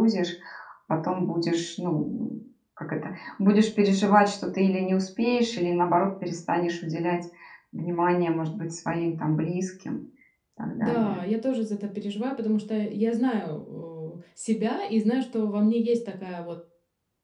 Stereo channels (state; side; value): identical; both; correlation 1.00